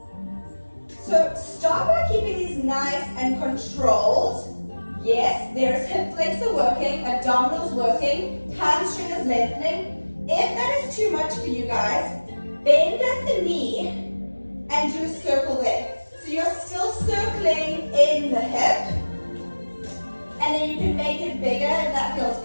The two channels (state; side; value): inverted; both; correlation -1.00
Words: So start by keeping these nice and controlled. Yes, there's hip flexor working, abdominals working, hamstring is lengthening. If that is too much for you guys, bend at the knee and do a circle there. So you're still circling in the hip, and then you can make it bigger if that feels